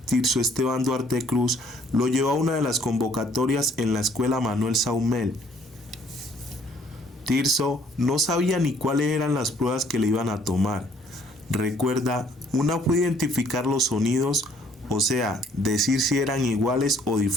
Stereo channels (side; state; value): both; normal; correlation 0.62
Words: Tirso Esteban Duarte Cruz, lo llevó a una de las convocatorias en la escuela Manuel Saumel. Tirso no sabía ni cuáles eran las pruebas que le iban a tomar. Recuerda, una fue identificar los sonidos, o sea, decir si eran iguales o